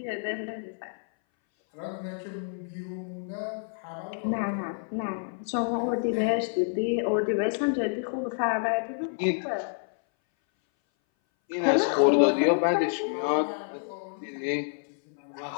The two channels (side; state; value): right; silent; 59 dB below the other